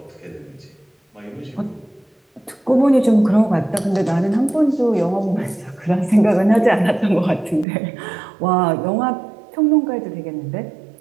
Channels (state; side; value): drops out; left; at 7.7 s